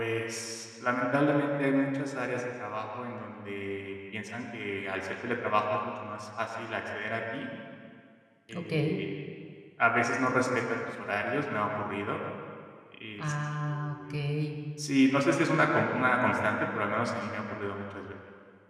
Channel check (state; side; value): identical; both; correlation 1.00